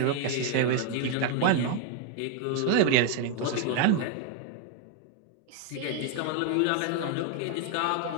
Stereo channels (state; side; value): different; both; correlation 0.01